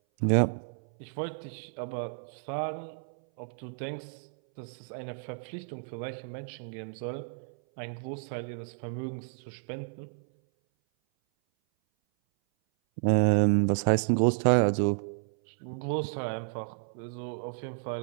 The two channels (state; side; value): silent; left; 57 dB below the other